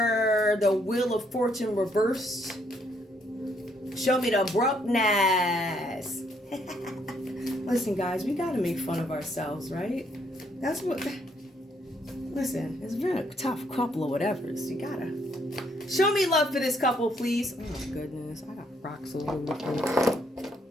the Wheel of Fortune reversed. Show me the abruptness. Listen, guys, we got to make fun of ourselves, right? That's what... Listen, it's been a tough couple of whatevers. You got to... Show me love for this couple, please. Oh, my goodness. I got rocks all over the place.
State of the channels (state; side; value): normal; both; correlation 0.70